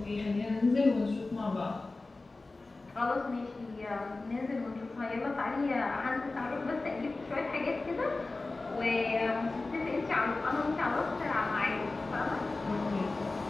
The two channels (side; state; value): right; quieter; 3.4 dB